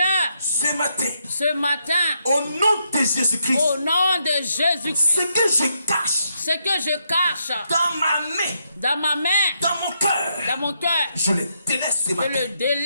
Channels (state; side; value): inverted; both; correlation -0.78